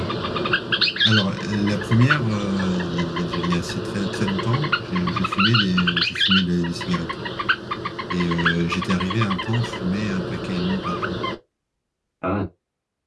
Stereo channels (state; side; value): identical; both; correlation 1.00